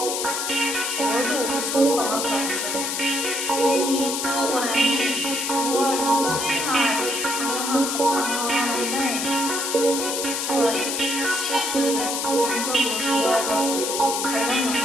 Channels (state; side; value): noise; left; hiss, 2 dB below the sound